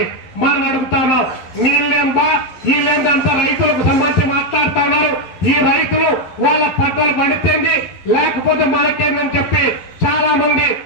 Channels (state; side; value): late; right; 12 ms